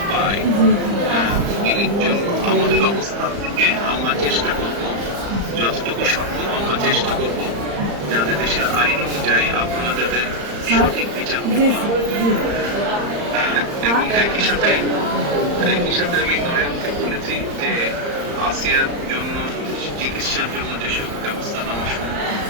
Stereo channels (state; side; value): late; left; 35 ms